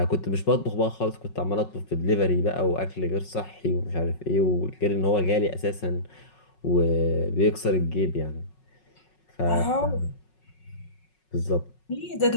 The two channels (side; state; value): right; late; 5.4 ms